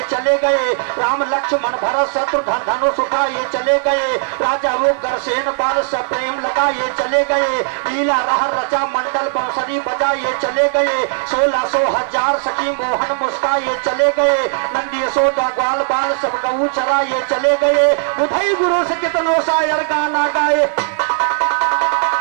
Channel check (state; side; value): silent; left; 59 dB below the other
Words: चले गए, राम लक्ष्मण भरत शत्रुघ्न धनुष उठाए चले गए। राजा उग्रसेन बाल से प्रेम लगाए चले गए, लीला रह रचा मंडल बांसुरी बजाए चले गए। 1600 हजार सखी मोहन मुस्काए चले गए, नंदी यशोदा ग्वाल बाल सब गऊ चराए चले गए। बुधई गुरु से कितनों शायर गाना गाए,